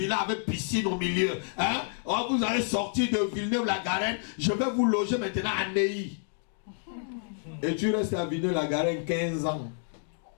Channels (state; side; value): silent; right; 59 dB below the other